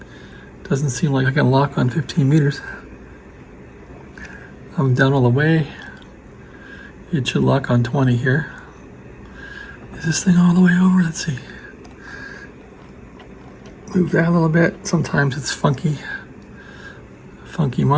Doesn't seem like I can lock on 15 meters. I'm down all the way. It should lock on 20 here. Is this thing all the way over? Let's see. Move that a little bit. Sometimes it's funky. Funky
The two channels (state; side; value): identical; both; correlation 1.00